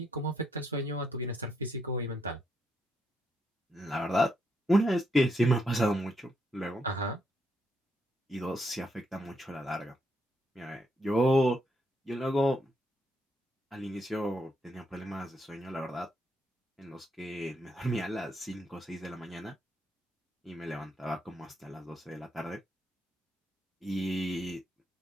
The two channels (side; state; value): both; normal; correlation 0.77